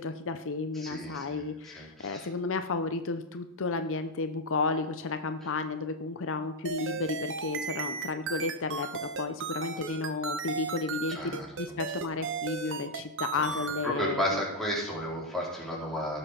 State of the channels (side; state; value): both; normal; correlation 0.01